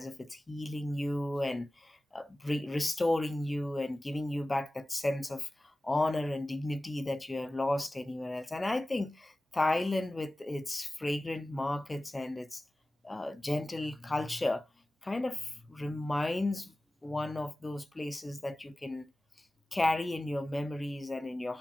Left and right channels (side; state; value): both; normal; correlation 0.96